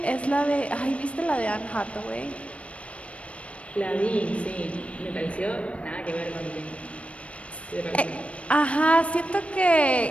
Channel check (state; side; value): late; right; 0.063 ms